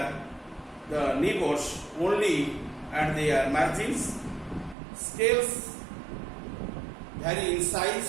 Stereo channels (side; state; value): left; drops out; at 4.8 s